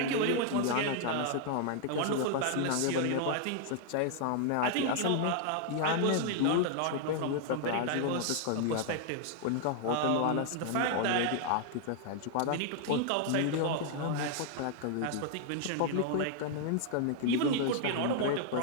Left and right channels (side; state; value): both; different; correlation 0.00